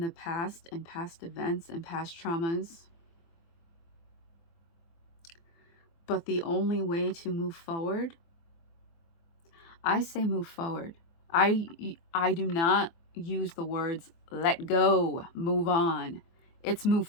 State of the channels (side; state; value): right; late; 24 ms